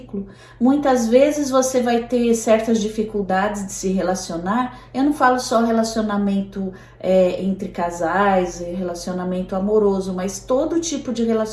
Muitas vezes você vai ter certas dificuldades de se relacionar. Eu não falo só relacionamento entre casais, relacionamento amoroso, mas todo tipo de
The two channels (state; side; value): identical; both; correlation 1.00